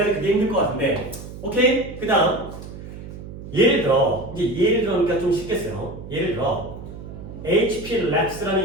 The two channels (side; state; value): right; noise; hum, 12 dB below the sound